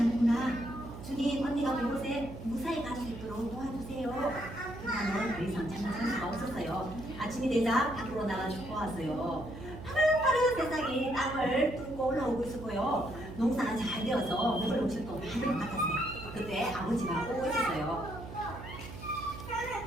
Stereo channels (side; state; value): right; noise; hum, 12 dB below the sound